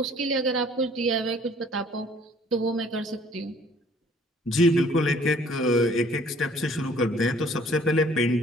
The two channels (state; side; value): normal; both; correlation 0.57